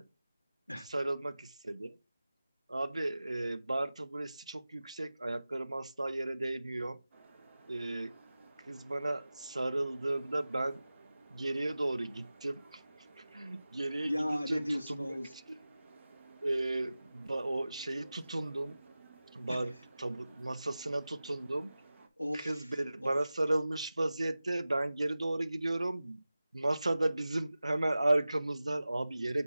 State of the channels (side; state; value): both; inverted; correlation -0.95